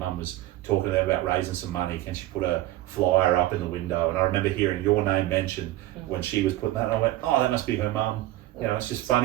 was talking about raising some money. Can she put a flyer up in the window? And I remember hearing your name mentioned when she was putting that. And I went, oh, that must be her mum. It's just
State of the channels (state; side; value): quieter; left; 15.9 dB